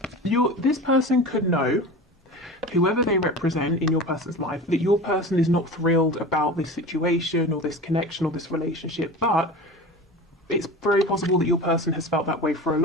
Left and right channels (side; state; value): both; normal; correlation 0.33